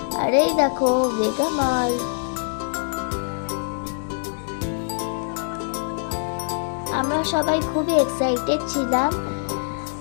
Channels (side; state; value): right; silent; digital silence